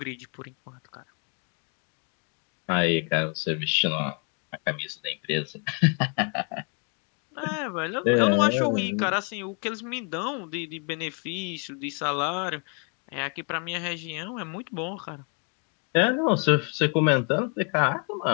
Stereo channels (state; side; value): quieter; right; 38.4 dB